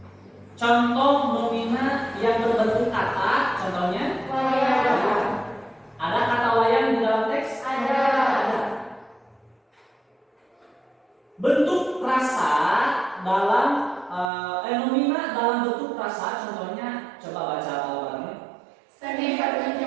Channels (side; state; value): left; drops out; at 14.3 s